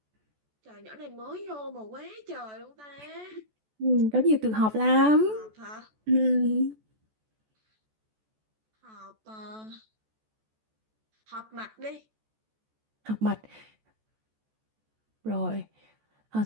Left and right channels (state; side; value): late; left; 14 ms